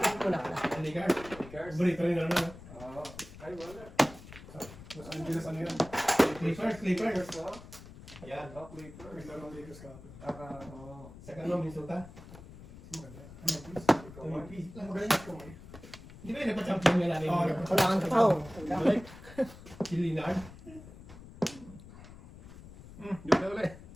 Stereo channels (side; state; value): left; noise; rumble, 17 dB below the sound